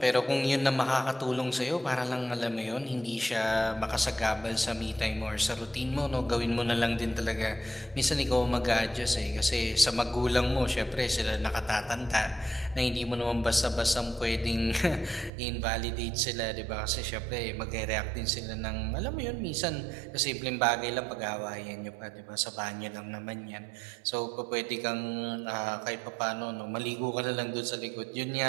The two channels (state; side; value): drops out; left; at 15.3 s